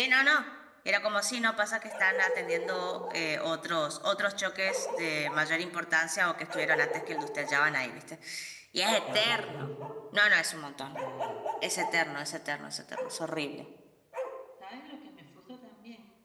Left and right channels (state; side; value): identical; both; correlation 1.00